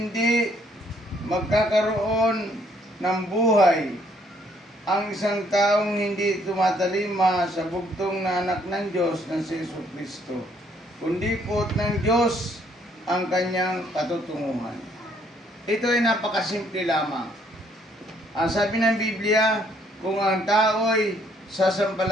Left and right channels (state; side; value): normal; both; correlation 0.66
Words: magkakaroon ng buhay ang isang taong hindi tumatalima sa bugtong na anak ng Diyos na si Jesucristo, kundi po ng Diyos ang kanyang patutunguhan. Ito ay napakasimple lamang. Ang sabi ng Biblia, kung ang tao ay